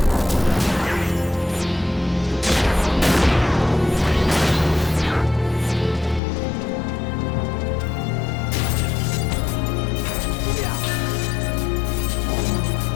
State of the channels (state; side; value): drops out; right; at 6.2 s